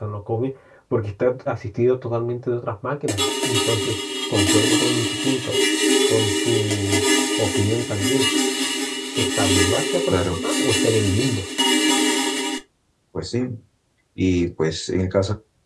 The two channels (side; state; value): both; identical; correlation 1.00